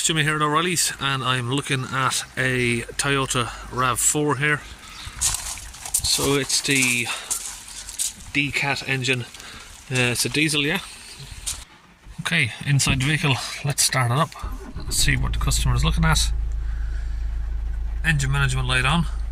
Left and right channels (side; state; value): both; identical; correlation 1.00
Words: Jimmy here at O'Reilly's, and I'm looking at a Toyota RAV4 here. So it's the D-Cat engine. It's a diesel, yeah. Okay, inside the vehicle, let's start it up. Let's see what the customer is looking at. Engine management light on.